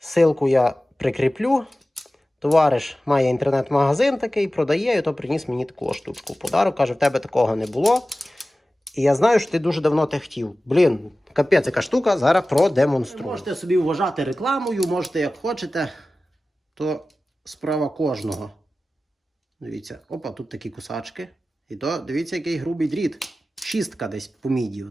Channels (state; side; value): normal; both; correlation 0.96